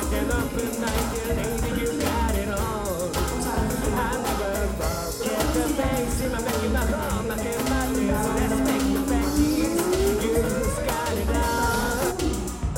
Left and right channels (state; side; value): identical; both; correlation 1.00